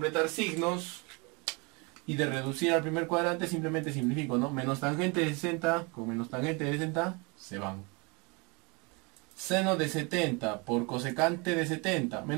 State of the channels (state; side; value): quieter; left; 29.8 dB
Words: signos. Y de reducir al primer cuadrante simplemente simplifico, ¿no? Menos tangente de 60 con menos tangente de 60 se van. Seno de 70 por cosecante de 70.